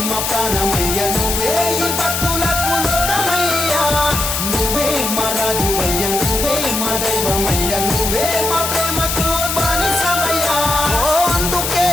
మా ప్రాణమయ్య నువ్వే ఈ భక్తులకు లోకమయ్యా నువ్వే మా రాజువయ్య నువ్వే మా దైవమయ్య నువ్వే మా ప్రేమకు బానిసవయ్యా అందుకే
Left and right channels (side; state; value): left; noise; hiss, 2 dB below the sound